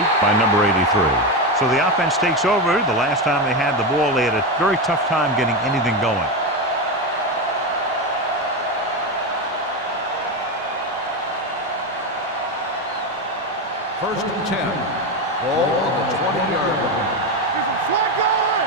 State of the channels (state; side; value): normal; both; correlation 0.14